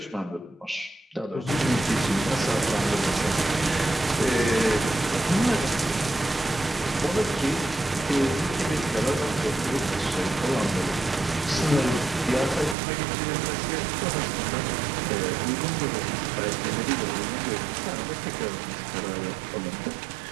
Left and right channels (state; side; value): drops out; left; at 12.8 s